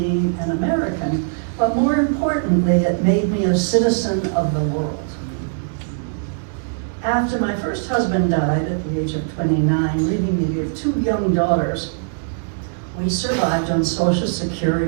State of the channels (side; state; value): left; silent; digital silence